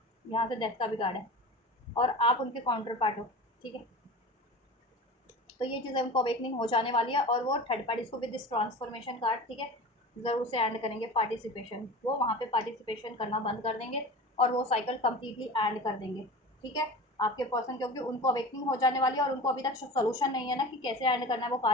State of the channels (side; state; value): both; normal; correlation 0.34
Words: यहाँ से डेथ का भी कार्ड है और आप उनके काउंटर पार्ट हो, ठीक है। तो ये चीज़ें उनको अवेकनिंग हो जाने वाली है और वो थर्ड पार्टीज को विद दिस ट्रांसफॉर्मेशन कार्ड, ठीक है, ज़रूर से एंड करेंगे पार्टिसिपेशन। वो वहाँ पे पार्टिसिपेशन करना बंद कर देंगे और वो साइकिल कम्प्लीटली एंड कर देंगे, ठीक है। आपके पर्सन क्योंकि उनको अवेकनिंग हो जाने वाली है और उनको अभी तक सोल्यूशन नहीं है ना कि कैसे एंड करना है वो